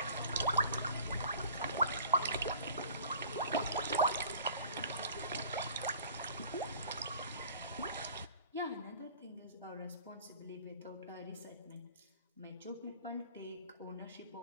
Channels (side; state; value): both; inverted; correlation -0.47